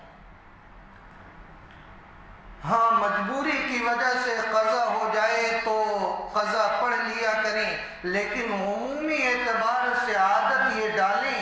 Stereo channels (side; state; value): both; identical; correlation 1.00